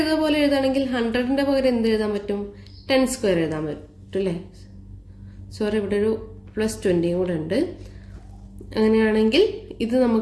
പോലെ എഴുതുകയാണെങ്കിൽ 100ൻ്റെ പകരം എന്ത് എഴുതാൻ പറ്റും? 10 സ്ക്വയർ എഴുതാൻ പറ്റും അല്ലേ? സോറി, ഇവിടെ ഒരു +20 കൂടെ ഉണ്ട്. അങ്ങനെയാണെങ്കിൽ ഇത്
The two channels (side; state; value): both; identical; correlation 1.00